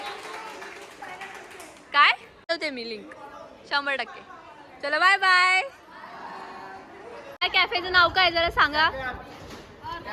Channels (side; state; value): both; identical; correlation 1.00